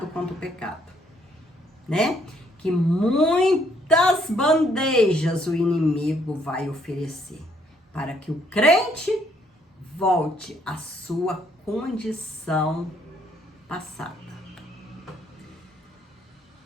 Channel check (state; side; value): normal; both; correlation 0.68